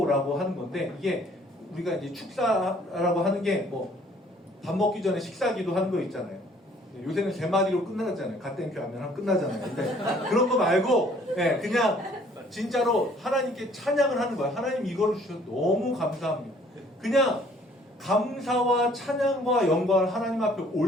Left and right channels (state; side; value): normal; both; correlation 0.58